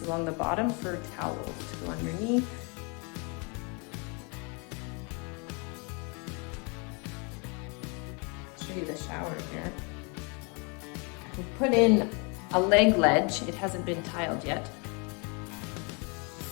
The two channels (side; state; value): right; quieter; 33.3 dB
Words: along the bottom for towels to go underneath. I'll show you the shower here. We put in a leg ledge. It hasn't been tiled yet.